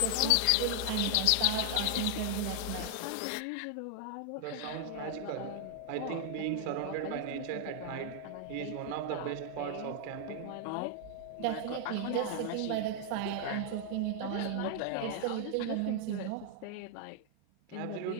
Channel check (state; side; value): different; both; correlation 0.00